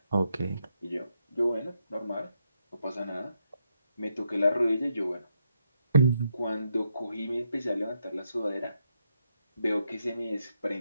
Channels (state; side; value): inverted; both; correlation -0.80